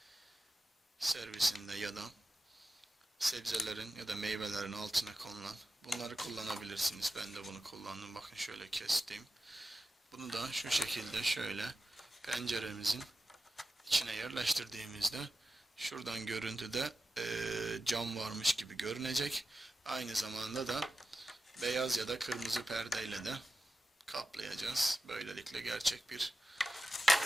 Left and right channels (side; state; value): both; normal; correlation 0.92